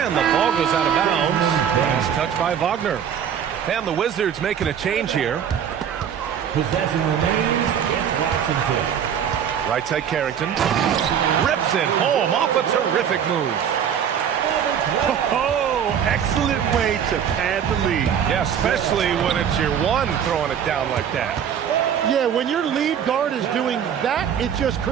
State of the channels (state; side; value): quieter; left; 8.5 dB